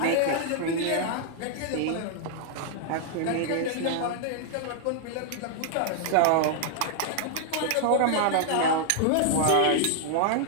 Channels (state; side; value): different; both; correlation 0.00